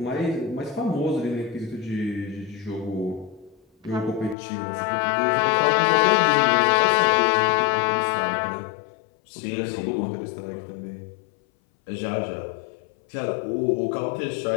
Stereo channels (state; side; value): drops out; right; at 4.4 s